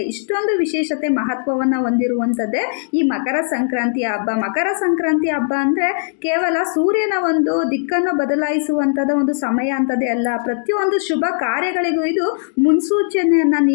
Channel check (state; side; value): silent; right; digital silence